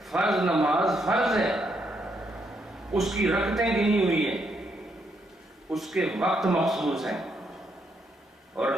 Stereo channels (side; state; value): both; normal; correlation 0.76